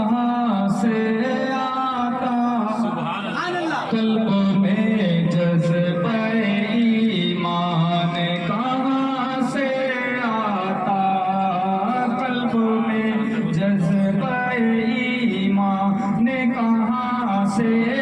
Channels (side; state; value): both; identical; correlation 1.00